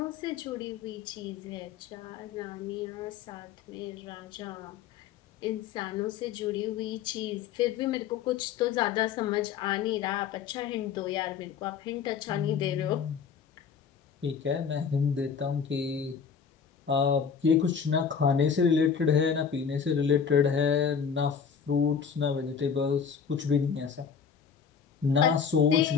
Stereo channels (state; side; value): quieter; right; 6.8 dB